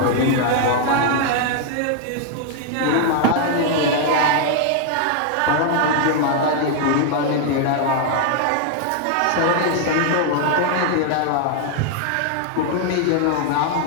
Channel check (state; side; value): different; both; correlation 0.00